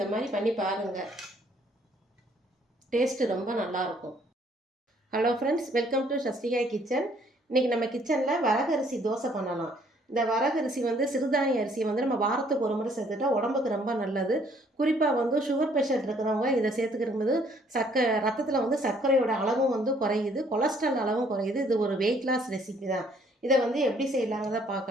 மாதிரி பண்ணி பாருங்கள், டேஸ்ட்டு ரொம்ப நல்லாயிருக்கும். Hello friends, welcome to Sasthikai kitchen. இன்றைக்கி நம்ம கிச்சனில் வரகரிசி தோசை பண்ணலாம். இந்த வரகரிசி சிறுதானிய அரிசியை நம்ம வாரத்துக்கு ஒரு முறை சேர்த்துட்டா உடம்புக்கு ரொம்ப நல்லது. குறிப்பாக சுகர் பேஷண்ட் இருக்கிறவங்க இதை சேர்த்துக்கிறபோது ரத்தத்தில் சர்க்கரையோட அளவும் குறையுது, கொலஸ்ட்ரால் அளவும் குறையுது. இது ஒரு வெயிட் லாஸ் ரெசிபி தான். இதை எப்படி செய்யலாங்கிறத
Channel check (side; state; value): both; normal; correlation 0.63